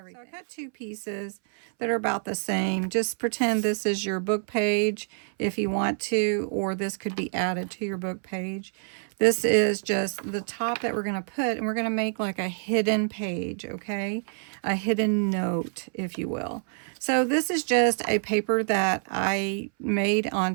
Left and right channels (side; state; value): left; silent; 60 dB below the other